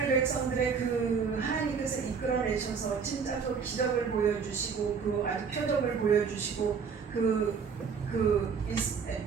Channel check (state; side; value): quieter; left; 6.0 dB